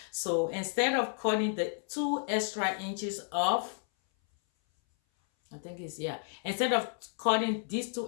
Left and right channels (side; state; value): right; silent; 56 dB below the other